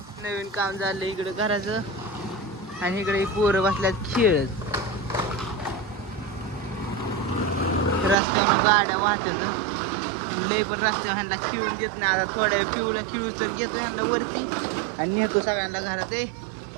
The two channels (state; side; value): drops out; left; at 8.2 s